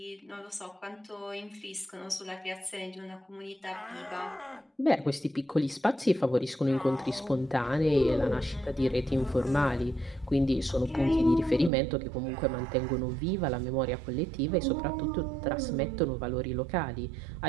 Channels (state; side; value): drops out; left; at 11.7 s